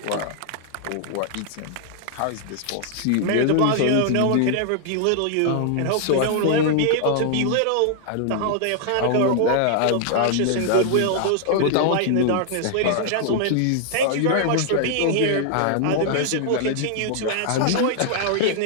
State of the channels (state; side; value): different; both; correlation -0.01